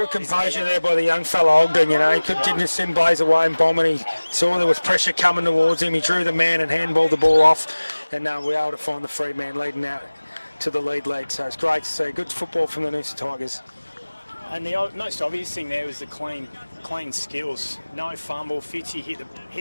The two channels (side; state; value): both; inverted; correlation -1.00